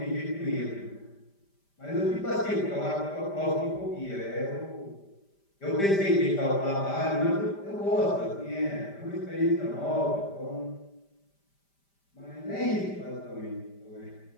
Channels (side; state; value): right; late; 5.1 ms